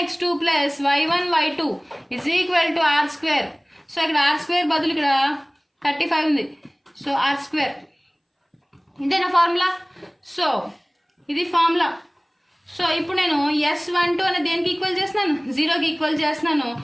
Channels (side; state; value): both; identical; correlation 1.00